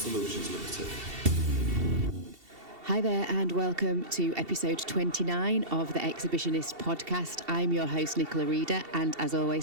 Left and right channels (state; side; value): late; left; 2.7 ms